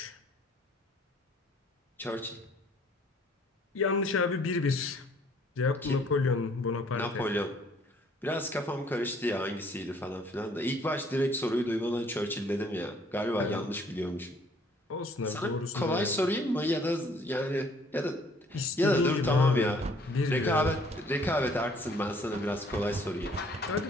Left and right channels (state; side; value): normal; both; correlation 0.60